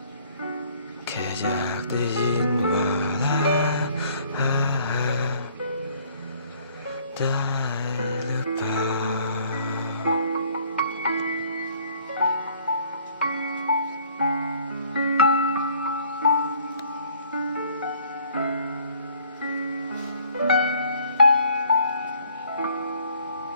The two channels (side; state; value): both; inverted; correlation -0.59